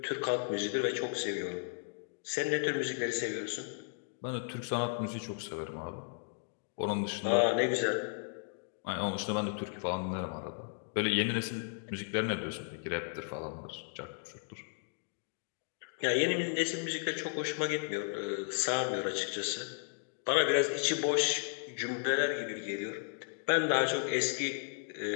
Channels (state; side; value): silent; right; digital silence